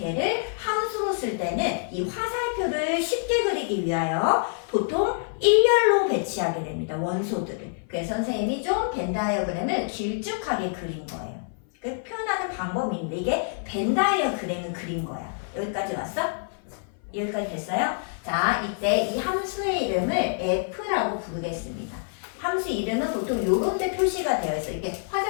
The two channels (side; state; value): right; silent; 56 dB below the other